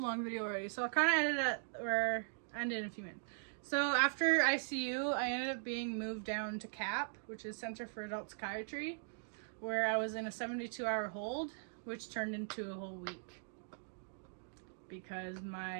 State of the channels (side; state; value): left; silent; digital silence